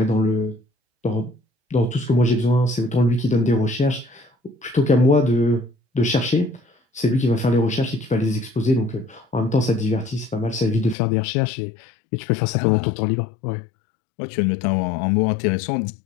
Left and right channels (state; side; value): drops out; right; at 11.0 s